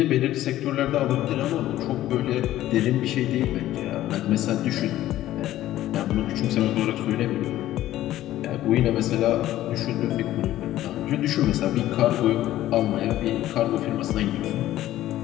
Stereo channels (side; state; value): right; quieter; 14.0 dB